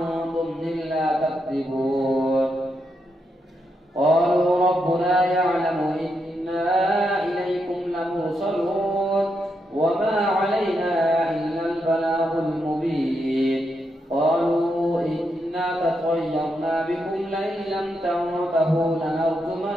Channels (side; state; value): both; normal; correlation 0.82